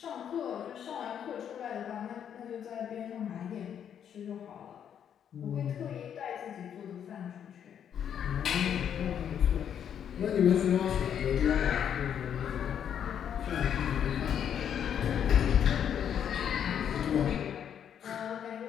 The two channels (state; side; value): quieter; right; 8.8 dB